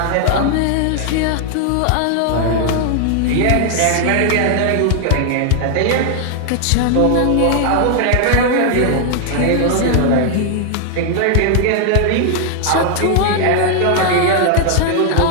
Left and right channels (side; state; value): both; different; correlation 0.00